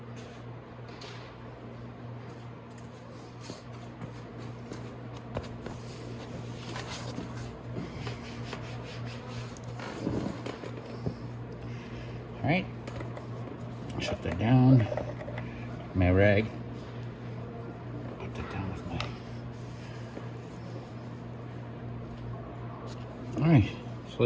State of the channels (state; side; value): identical; both; correlation 1.00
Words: All right, shut that down. My rag. Put that down with my. All right, so